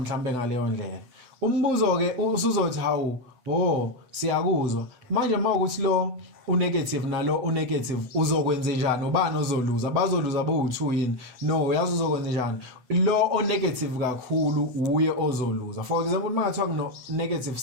ngaleyo ndlela. Umbuzo ke usuzothi hawu siyakuzwa manje mawukuthi lo unegative nalo unegative uzokwenza njani ubani ozoluza bazoluza bo2 yini no uyazi uzokwenza njani lo onegative kakhulu uye ozoluza. For example mangathiwa kuno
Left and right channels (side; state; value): left; late; 8.0 ms